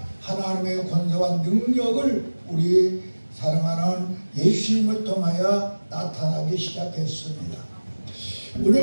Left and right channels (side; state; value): both; inverted; correlation -1.00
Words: 하나님의 권세와 능력을 우리 사랑하는 예수님을 통하여 나타나기 시작했습니다.